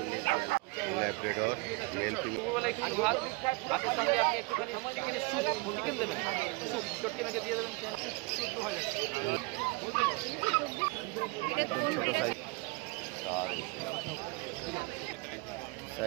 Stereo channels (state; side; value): quieter; left; 26.4 dB